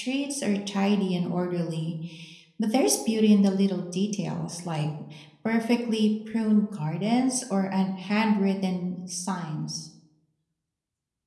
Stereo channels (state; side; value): identical; both; correlation 1.00